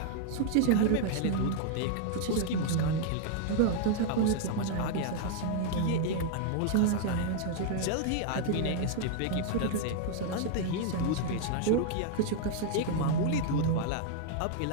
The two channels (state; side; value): different; both; correlation 0.00